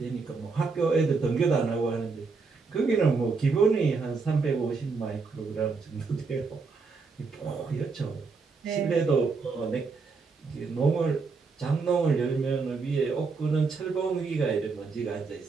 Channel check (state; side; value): quieter; left; 4.6 dB